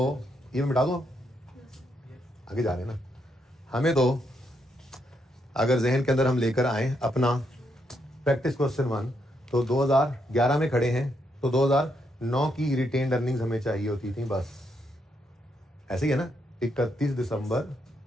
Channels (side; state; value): both; normal; correlation 0.78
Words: ये मैं मिटा दूं, आगे जा रहे हैं ना। हमें तो अगर जहन के अंदर हम लेकर आए अपना प्रैक्टिस क्वेश्चन 1, तो 2011 में खड़े हैं, तो 2009 की रिटेन्ड अर्निंग्स हमें चाहिए होती थी, बस ऐसे ही है ना।